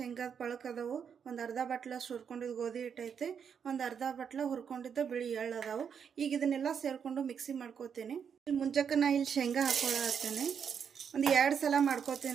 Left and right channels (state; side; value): quieter; left; 7.3 dB